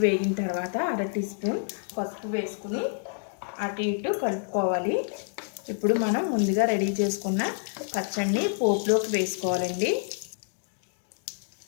వేగిన తర్వాత 1/2 టీ స్పూన్ పసుపు వేసుకుని అటు ఇటు కలుపుకోవాలి. ఇప్పుడు మనం ముందుగా రెడీ చేసుకున్న పచ్చడిని పోపులోకి వేసుకోవాలండి.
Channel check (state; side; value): silent; right; digital silence